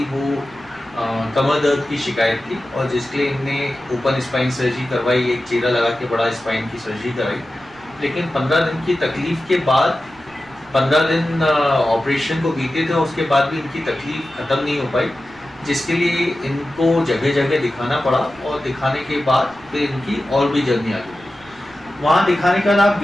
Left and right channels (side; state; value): right; noise; rumble, 26 dB below the sound